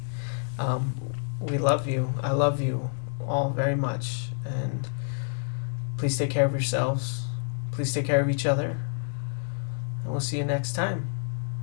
We love you. I love you all very much. And please take care of yourselves. Please take care of each other. And we'll see you next time.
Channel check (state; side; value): silent; right; digital silence